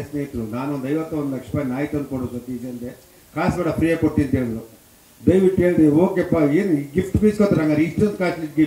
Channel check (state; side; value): identical; both; correlation 1.00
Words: ಸ್ನೇಹಿತರು. ನಾನೊಂದು 51 ಲಕ್ಷ ರೂಪಾಯಿ ನಾಯಿ ತಂದು ಕೊಡು ಸತೀಶ್ ಅಂದೆ. ಕಾಸು ಬೇಡ, ಫ್ರೀಯಾಗಿ ಕೊಡ್ತೀನಿ ಅಂತ ಹೇಳಿದ್ರು. ದಯವಿಟ್ಟು ಹೇಳಿದೆ, ಓಕೆಪ್ಪ ಏನು ಗಿಫ್ಟ್ ಬೀಸ್ಕೊತಾರೆ, ಹಂಗಾರೆ ಇಷ್ಟೊಂದು ಕಾಸ್ಟ್ಲಿ